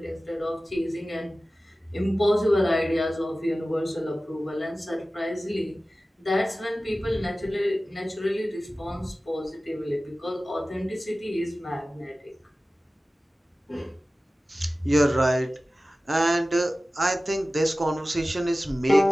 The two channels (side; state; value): both; normal; correlation 0.96